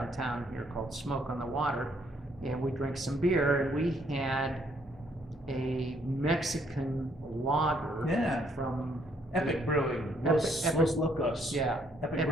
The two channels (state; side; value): normal; both; correlation 0.68